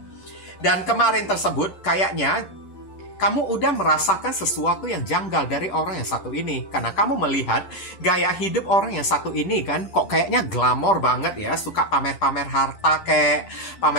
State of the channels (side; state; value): right; late; 11 ms